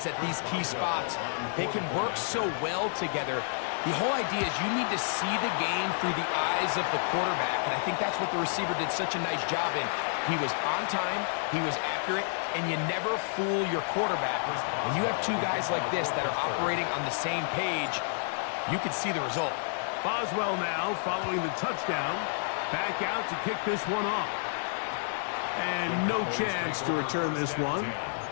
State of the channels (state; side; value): silent; right; 58 dB below the other